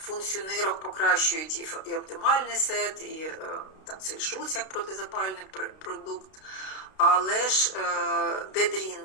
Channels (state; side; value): late; right; 32 ms